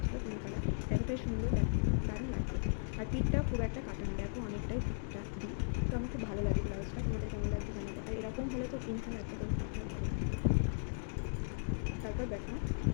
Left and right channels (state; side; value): silent; right; digital silence